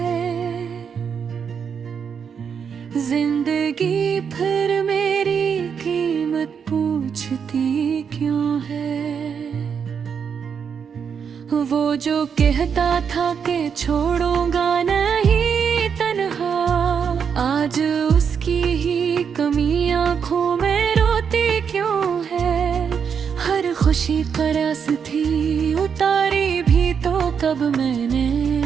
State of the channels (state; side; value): quieter; left; 6.9 dB